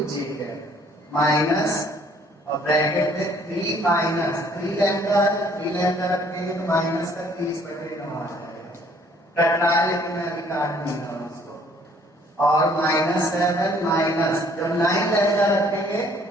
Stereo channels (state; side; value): normal; both; correlation 0.60